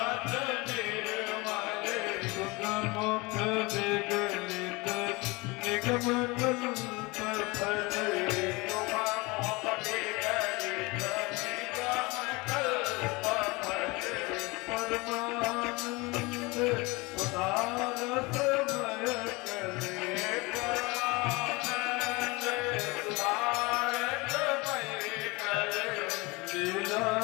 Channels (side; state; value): right; quieter; 24.7 dB